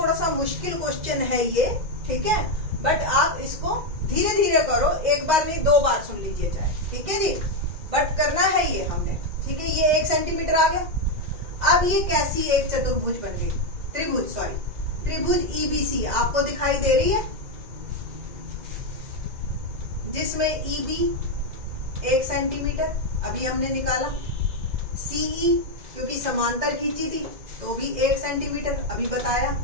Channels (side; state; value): left; late; 2.0 ms